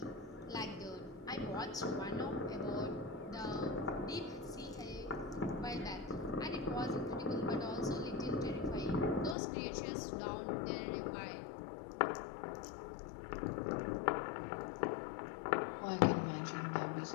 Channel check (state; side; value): drops out; right; at 9.3 s